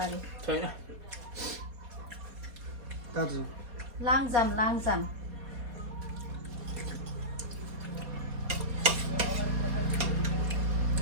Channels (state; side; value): late; left; 4.2 ms